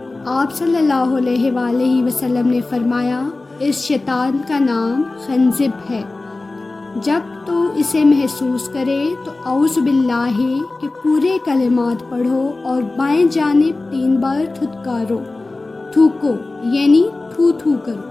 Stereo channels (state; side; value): quieter; right; 3.2 dB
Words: آپ صلی اللہ علیہ وآلہ وسلم نے فرمایا، اس شیطان کا نام خنزب ہے۔ جب تو اسے محسوس کرے تو اعوذ باللہ کے پورے کلمات پڑھو اور بائیں جانب 3 بار تھوکو یعنی تھو کرو۔